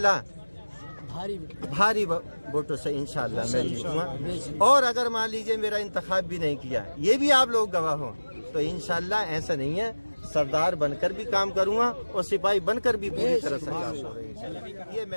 भारी वोटों से इंशाल्लाह मैं जीतूंगा। और अगर मान लीजिए मेरा इंतखाब भी नहीं किया, ये भी आप लोग गवाह हो, तो इंशाल्लाह ऐसा नहीं है, सरदार बनकर भी काम करूंगा और सिपाही बनकर भी पूरी तरह से काम करूंगा। ये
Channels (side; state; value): both; inverted; correlation -1.00